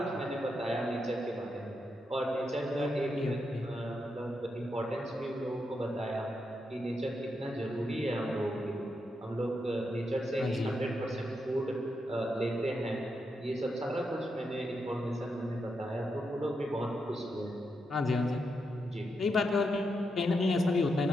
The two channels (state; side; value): normal; both; correlation 0.84